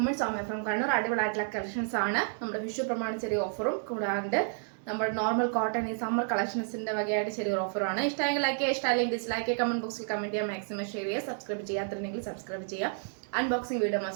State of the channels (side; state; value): left; silent; 57 dB below the other